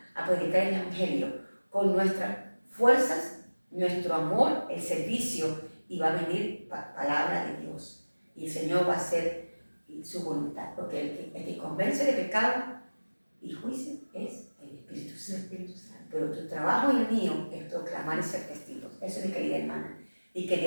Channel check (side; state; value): both; inverted; correlation -1.00